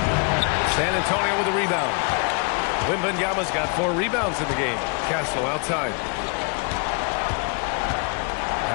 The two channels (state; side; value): quieter; right; 35.6 dB